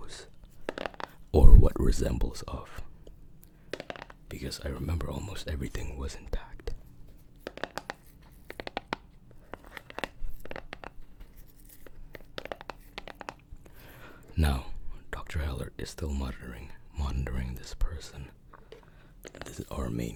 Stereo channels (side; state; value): both; identical; correlation 1.00